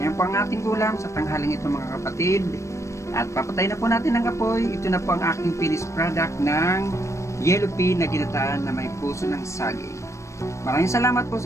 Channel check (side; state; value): right; late; 0.14 ms